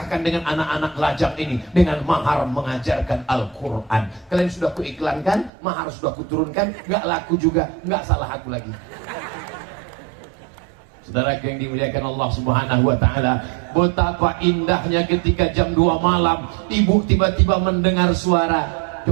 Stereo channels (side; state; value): left; drops out; at 5.5 s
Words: dengan anak-anak lajang ini dengan mahar mengajarkan Al-Quran. Kalian sudah kuiklankan, mahar sudah kuturunkan, gak laku juga, gak salah aku lagi. Saudara yang dimuliakan Allah Subhanahu wa taala, betapa indahnya ketika jam 2 malam ibu tiba-tiba mendengar suara